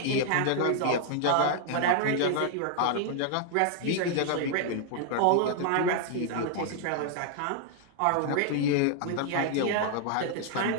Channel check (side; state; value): both; different; correlation 0.00